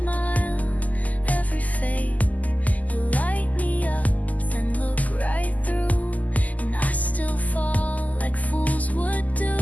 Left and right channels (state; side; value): late; right; 0.077 ms